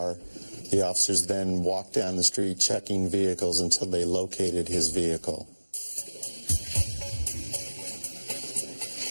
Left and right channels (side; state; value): both; inverted; correlation -1.00